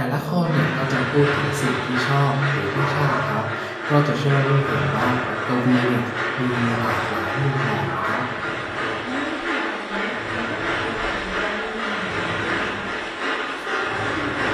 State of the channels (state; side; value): identical; both; correlation 1.00